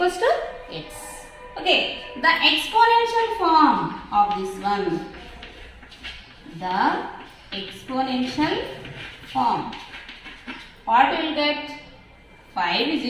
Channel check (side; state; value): both; identical; correlation 1.00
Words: to x. Okay, the exponential form of this one. The exponential form. What we will get? 5 is